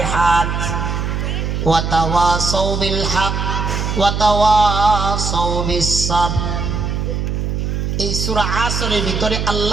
ওয়া তাওয়াসাউ বিল হক ওয়া তাওয়াসাউ বিস সাবর। এই সূরা আসরের ভিতরে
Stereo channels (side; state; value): right; noise; hum, 1 dB below the sound